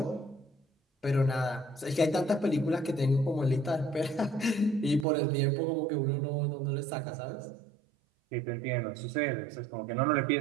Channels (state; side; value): drops out; left; at 5.1 s